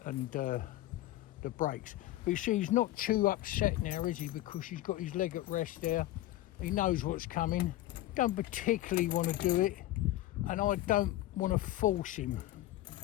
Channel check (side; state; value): right; quieter; 15.4 dB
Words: and the brakes. But you see, he's not too upset now, is he? Because he's got his leg at rest there. He knows what's coming. Don't particularly want to do it. And I don't want to force him.